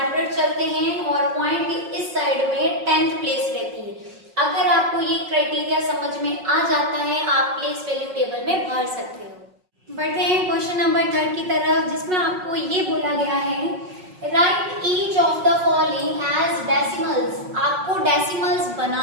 चलते हैं और पॉइंट के इस साइड में 10th प्लेस रहती है। अगर आपको ये क्राइटेरिया समझ में आ जाता है आप प्लेस वैल्यू टेबल में भर सकते हो। बढ़ते हैं क्वेश्चन नंबर 3 की तरफ, जिसमें आपको ये बोला गया है write each of the following as decimals. आपको डेसिमल्स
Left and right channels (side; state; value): left; late; 5.5 ms